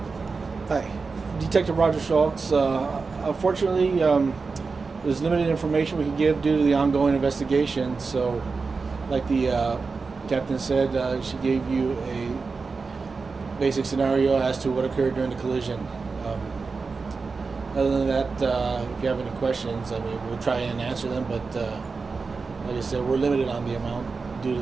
Hi, Detective Roger Schultz. Unfortunately, there's limited information we can give due to the ongoing investigation. So, like the captain said, she gave you a basic scenario as to what occurred during the collision. Other than that, if you have any questions, I mean, we'll try and answer them, but like I said, we're limited on the amount due to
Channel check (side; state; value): left; quieter; 4.5 dB